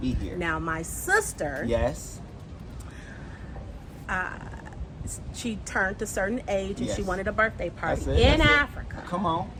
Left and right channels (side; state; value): both; identical; correlation 1.00